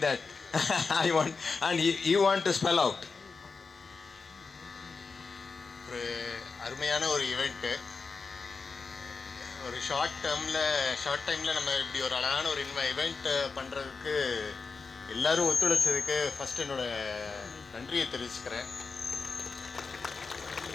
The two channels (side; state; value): right; quieter; 4.6 dB